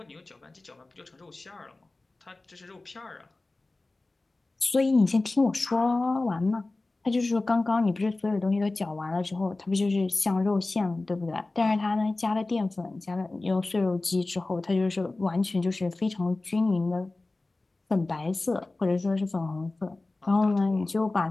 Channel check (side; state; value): right; quieter; 3.1 dB